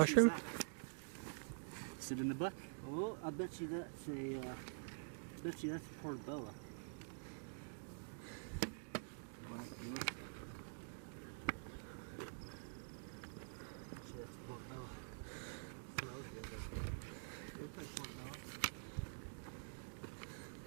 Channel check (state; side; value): silent; left; digital silence